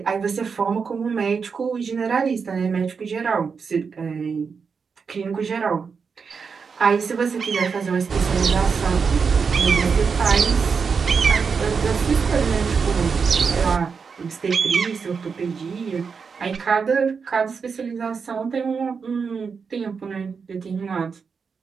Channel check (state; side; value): quieter; left; 5.6 dB